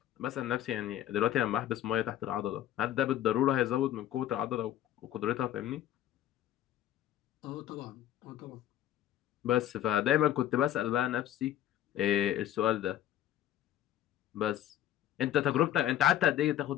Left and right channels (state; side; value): quieter; right; 12.1 dB